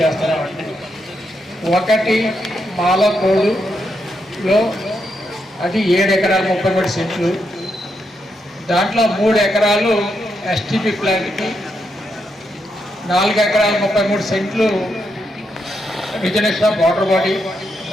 ఒకటి మాలకోడులో అది 7 ఎకరాలు 33 సెంట్లు, దాంట్లో 3 ఎకరాలు ఎస్టీపీ ప్లాంట్కి, 4 ఎకరాలు 33 సెంట్లు రిజర్వేషన్ వాటర్ బాడీ,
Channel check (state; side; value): normal; both; correlation 0.81